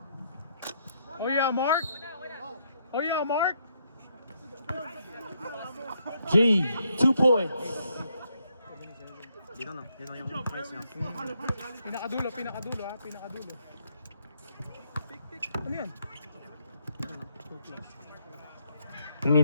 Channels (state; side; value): inverted; both; correlation -0.75